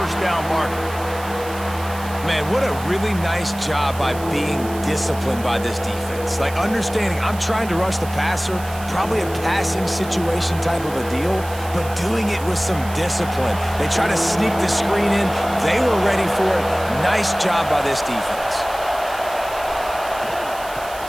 down marker. Man, what a really nice job by being disciplined by this defense. Like, understanding I'm trying to rush the passer, probably a passing situation type of a deal, but doing it with some discipline. They try to sneak the screen in. They were ready for it. Nice job by this defense.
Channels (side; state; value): right; noise; hiss, 16 dB below the sound